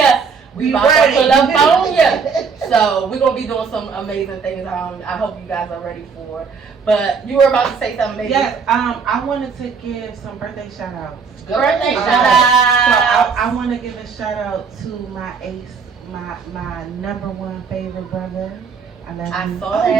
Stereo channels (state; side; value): quieter; left; 5.6 dB